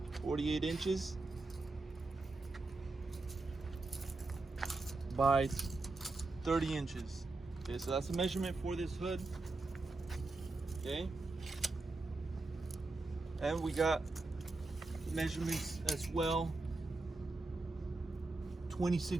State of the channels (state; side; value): quieter; left; 3.3 dB